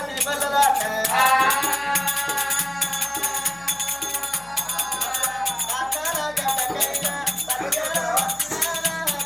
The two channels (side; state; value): left; noise; hum, 25 dB below the sound